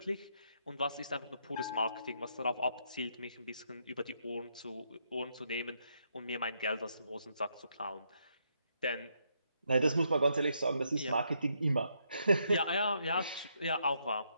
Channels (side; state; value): both; inverted; correlation -0.76